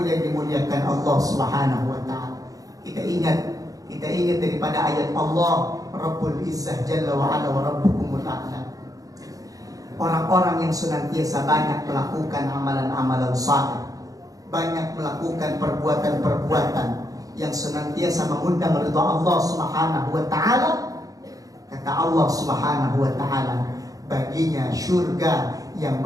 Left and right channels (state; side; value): late; left; 0.17 ms